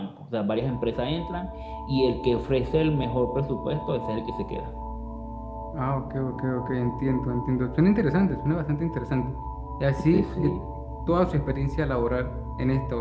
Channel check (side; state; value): both; identical; correlation 1.00